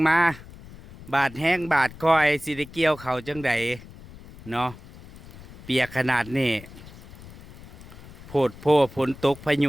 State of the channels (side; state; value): left; noise; rumble, 18 dB below the sound